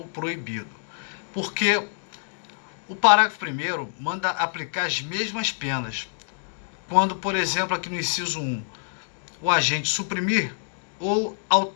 proibido. Porque o parágrafo 1º manda aplicar as mesmas penas. Quando, por exemplo, aqui no inciso 1, o agente suprimir ou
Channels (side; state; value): right; silent; digital silence